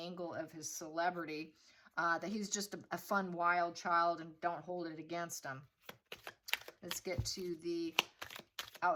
of his celebrity, that he's just a fun, wild child and don't hold it against him. Let's get to the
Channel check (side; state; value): both; identical; correlation 1.00